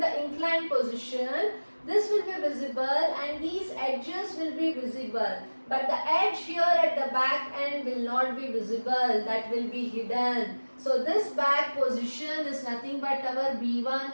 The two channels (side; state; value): both; inverted; correlation -1.00